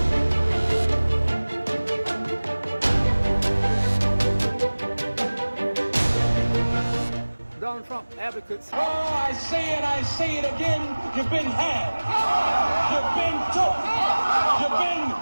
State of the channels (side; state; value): both; inverted; correlation -1.00